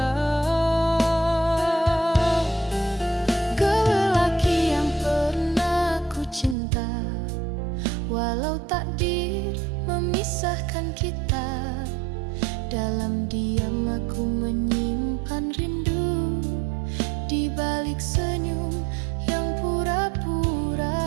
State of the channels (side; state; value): left; drops out; at 6.6 s